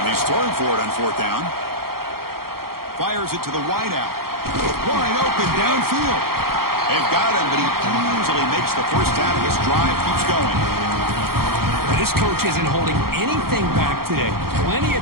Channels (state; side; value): late; left; 0.94 ms